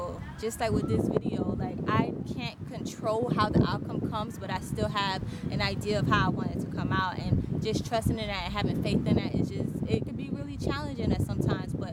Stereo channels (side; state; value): both; identical; correlation 1.00